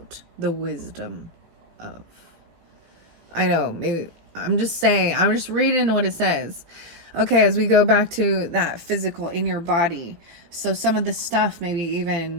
the wisdom of. I know, maybe I'm just reading what it says. Okay, as we go back to that physical in your body. So some of the stuff maybe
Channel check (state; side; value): late; left; 18 ms